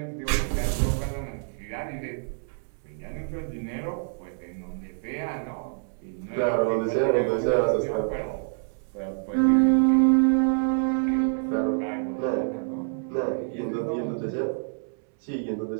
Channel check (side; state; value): left; silent; 60 dB below the other